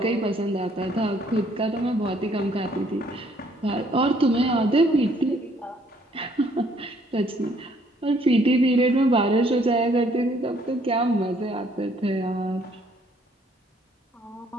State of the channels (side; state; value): both; normal; correlation 0.64